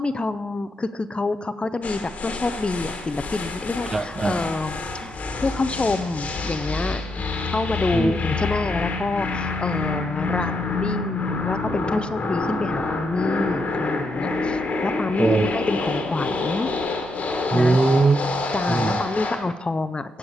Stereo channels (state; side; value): normal; both; correlation 0.81